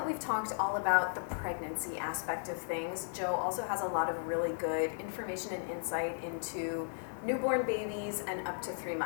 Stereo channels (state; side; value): silent; right; 54 dB below the other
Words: we've talked all about the pregnancy aspect of things, Jo also has a lot of really good information and insight into newborn babies and up to 3